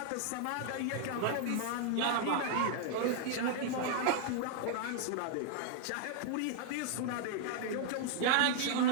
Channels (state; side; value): different; both; correlation -0.01